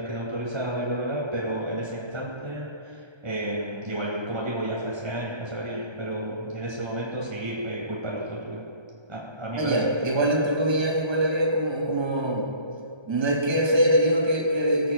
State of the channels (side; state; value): left; late; 1.3 ms